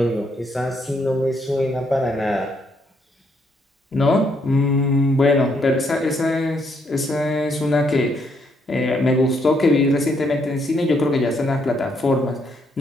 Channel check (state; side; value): normal; both; correlation 0.73